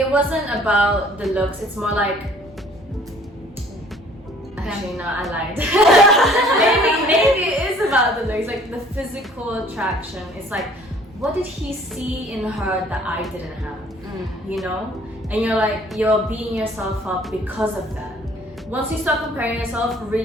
wasn't about the looks. It's more like. Actually, no, I lied. maybe it is about the looks, like the physical attraction. It's like, what did he see in her that I didn't have? You know, and you're beating yourself up because of that. Once you start comparing yourself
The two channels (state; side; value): normal; both; correlation 0.55